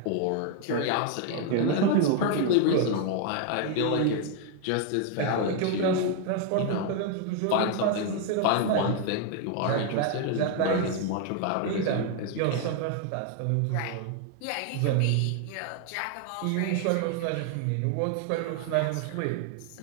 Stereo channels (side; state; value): both; different; correlation 0.00